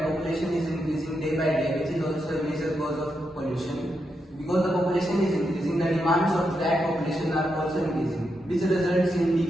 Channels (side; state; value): both; normal; correlation 0.84